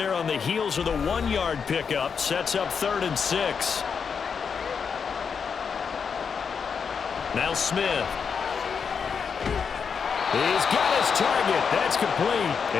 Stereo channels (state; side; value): quieter; right; 6.2 dB